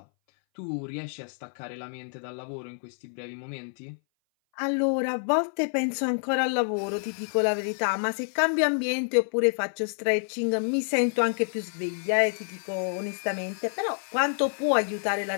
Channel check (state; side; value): silent; right; 59 dB below the other